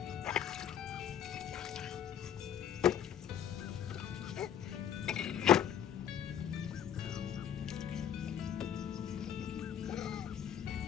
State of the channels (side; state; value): right; quieter; 9.5 dB